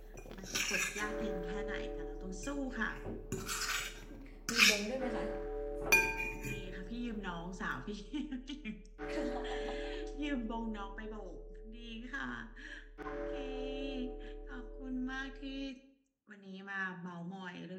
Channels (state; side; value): identical; both; correlation 1.00